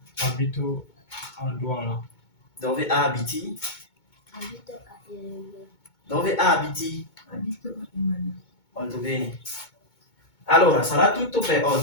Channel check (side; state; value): right; late; 2.2 ms